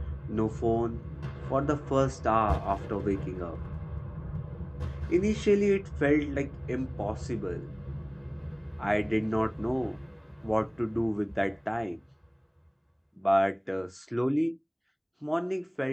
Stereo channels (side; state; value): both; identical; correlation 1.00